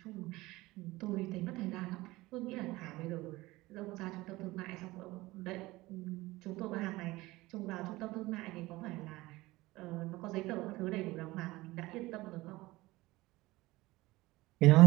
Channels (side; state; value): left; quieter; 19.7 dB